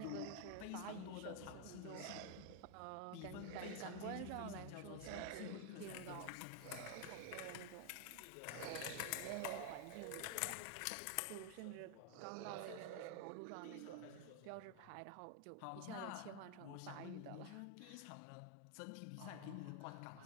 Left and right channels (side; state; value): both; different; correlation 0.00